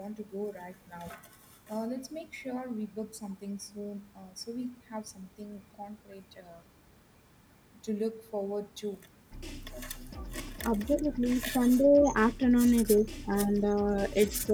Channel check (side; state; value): both; identical; correlation 1.00